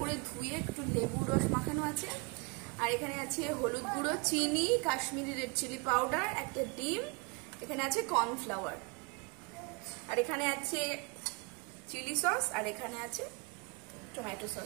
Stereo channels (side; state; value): left; quieter; 30.5 dB